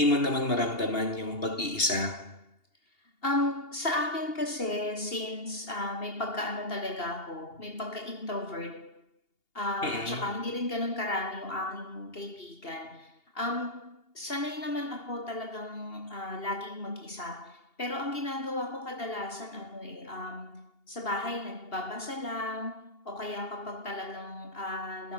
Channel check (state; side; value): late; right; 2.8 ms